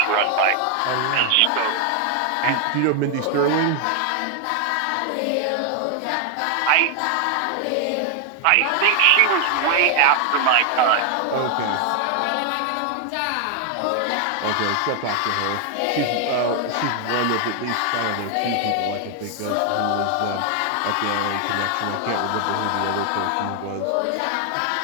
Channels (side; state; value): both; different; correlation 0.00